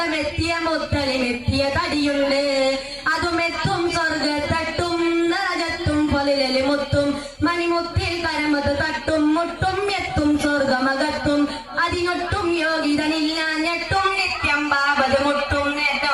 മുത്തലിമെത്തിയ തടിയുണ്ട് അതുമെത്തും സ്വർഗത്തട്ടും നരകത്തും പൊലിലി മുത്തും മണിമുത്തിൽ കരമത് തട്ടും മുട്ടും എത്തും സ്വർഗമകത്തും അതിനൊട്ടും യോഗ്യതനില്ല ഞെട്ടും നിത്യം ബാബത് മുട്ടും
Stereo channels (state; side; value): identical; both; correlation 1.00